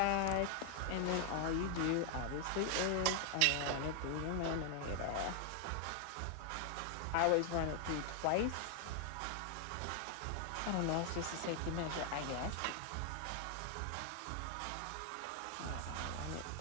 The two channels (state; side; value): different; both; correlation 0.00